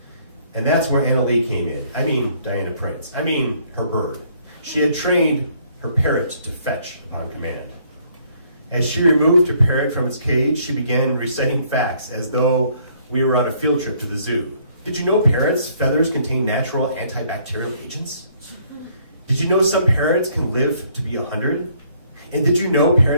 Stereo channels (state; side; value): inverted; both; correlation -0.65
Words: and that's where Anna Lee came in. Diana Prince. Her bird. She had trained her parrot to fetch upon command. As she removed her parrot from its cage, she began reciting facts as though we were on a field trip to the zoo. Did you know parrots' feathers contain natural antibacterial agents? Did you know some parrots can live to be 100? And did you know